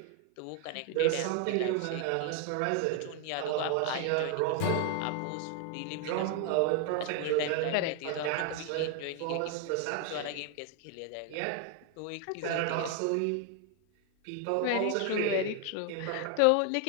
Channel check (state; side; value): different; both; correlation 0.00